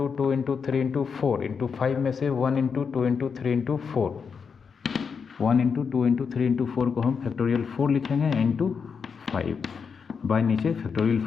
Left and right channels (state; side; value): quieter; right; 6.0 dB